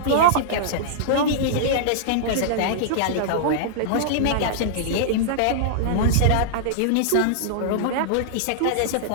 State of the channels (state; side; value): different; both; correlation -0.02